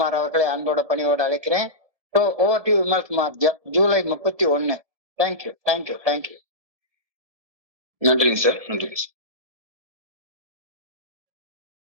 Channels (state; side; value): late; left; 1.7 ms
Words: அவர்களை அன்போட பணியோடு அழைக்கிறேன். Over to Vimal Kumar. July 31. Thank you. நன்றிங்க சார்.